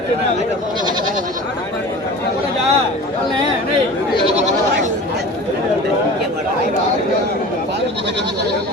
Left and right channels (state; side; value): normal; both; correlation 0.38